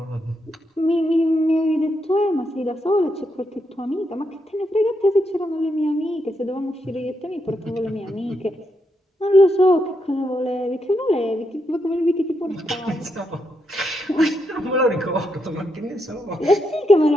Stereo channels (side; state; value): both; normal; correlation 0.81